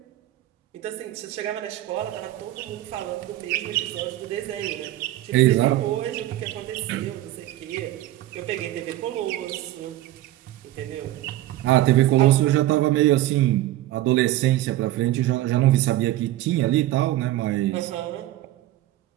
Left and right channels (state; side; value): quieter; left; 15.1 dB